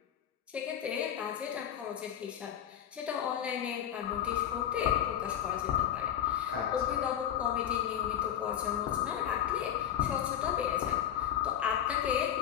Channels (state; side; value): quieter; right; 10.1 dB